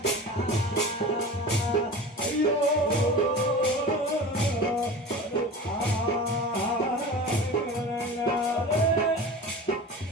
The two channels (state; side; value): normal; both; correlation 0.34